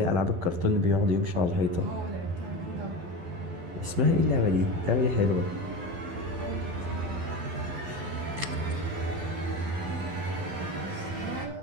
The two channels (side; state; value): left; late; 12 ms